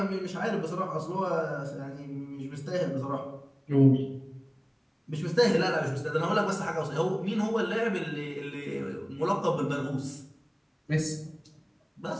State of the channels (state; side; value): identical; both; correlation 1.00